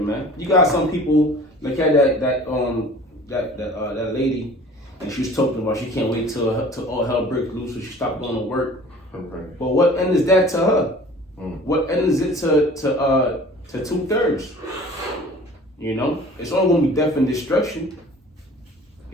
man. You got some people like that lady, and she was talking about she can't wait till all hell breaks loose, so she stopped going to work. Okay. But what end is that to her? Mm. What end is it to 2/3? You know, it's only gonna be death and destruction.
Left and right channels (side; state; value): both; normal; correlation 0.46